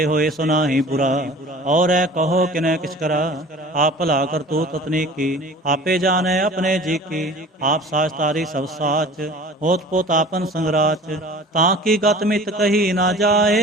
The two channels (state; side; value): normal; both; correlation 0.43